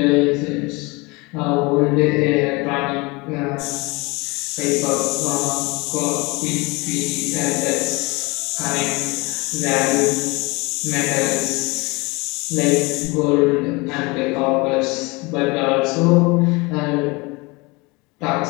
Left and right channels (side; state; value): right; quieter; 25.7 dB